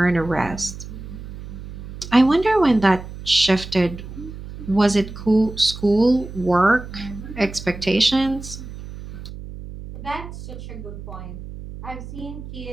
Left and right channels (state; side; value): noise; right; hum, 12 dB below the sound